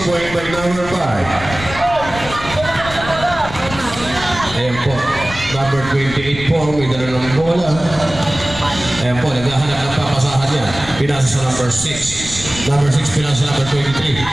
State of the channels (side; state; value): left; noise; rumble, 12 dB below the sound